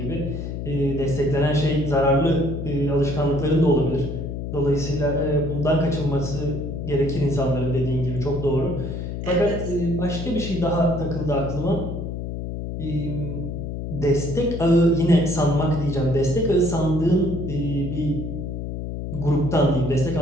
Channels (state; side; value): noise; left; hum, 5 dB below the sound